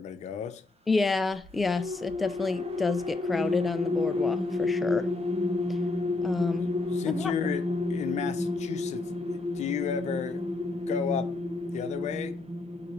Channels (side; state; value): right; quieter; 3.3 dB